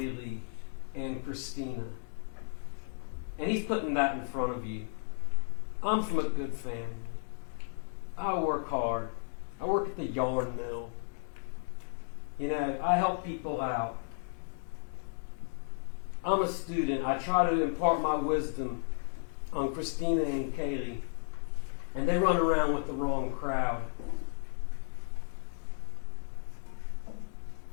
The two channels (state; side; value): silent; right; 55 dB below the other